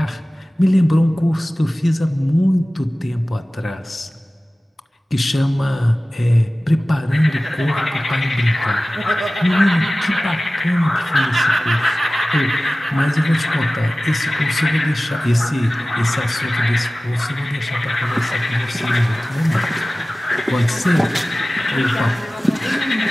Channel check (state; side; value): normal; both; correlation 0.97